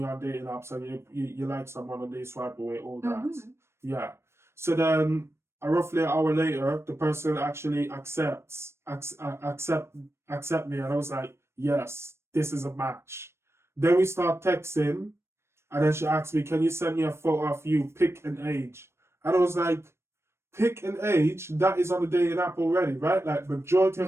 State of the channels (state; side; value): late; left; 0.13 ms